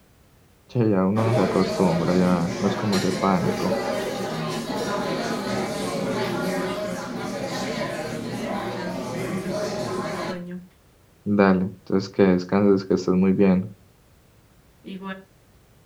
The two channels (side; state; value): both; identical; correlation 1.00